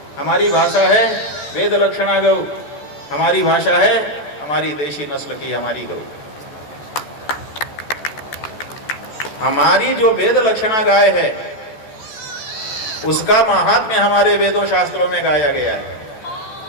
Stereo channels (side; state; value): right; late; 14 ms